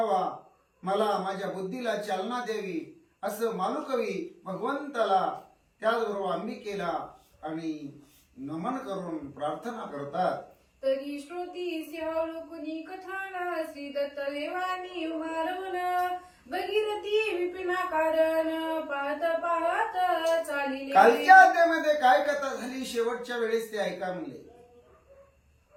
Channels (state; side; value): identical; both; correlation 1.00